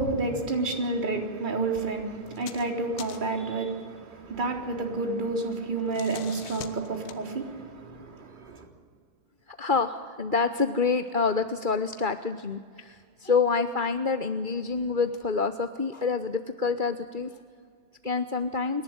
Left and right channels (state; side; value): late; left; 2.3 ms